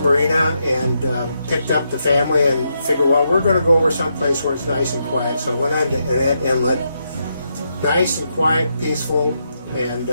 and picked up the family and figured, well, we're going to go over someplace where it's nice and quiet. So went on to Annette Inlet, nice and quiet, peaceful, and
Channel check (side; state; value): both; inverted; correlation -0.81